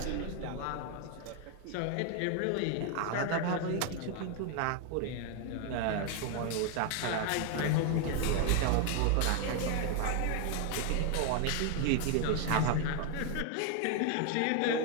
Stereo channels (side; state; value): both; different; correlation 0.00